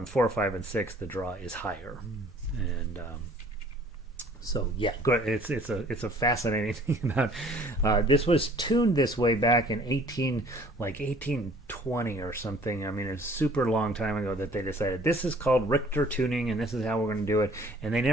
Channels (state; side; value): normal; both; correlation 0.54